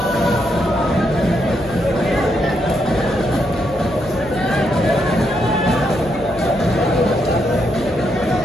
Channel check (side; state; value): left; noise; hum, 17 dB below the sound